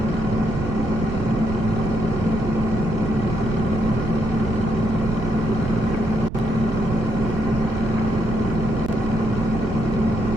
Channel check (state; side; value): noise; right; rumble, 7 dB below the sound